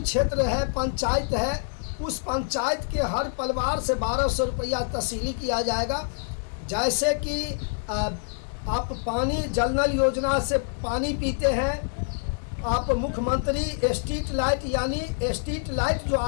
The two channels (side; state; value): right; silent; digital silence